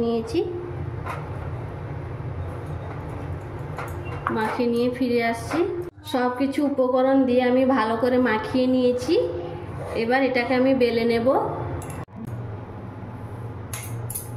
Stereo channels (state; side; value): identical; both; correlation 1.00